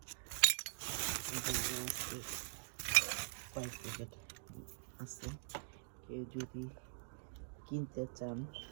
কয়েক প্যাকেট আছে, কেউ যদি কিনতে চান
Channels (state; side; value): silent; left; digital silence